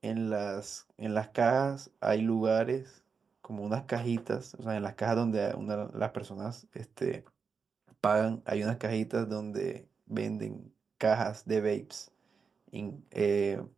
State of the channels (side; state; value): left; quieter; 5.5 dB